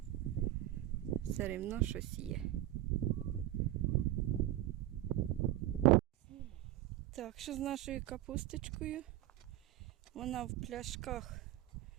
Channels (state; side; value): quieter; left; 14.6 dB